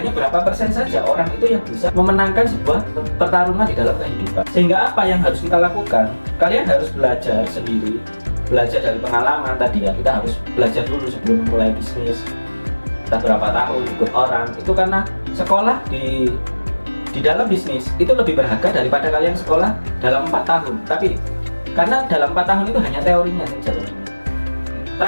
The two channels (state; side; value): inverted; both; correlation -1.00